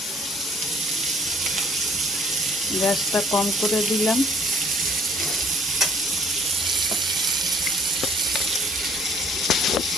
গ্যাসটা কম করে দিলাম।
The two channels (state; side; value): normal; both; correlation 0.58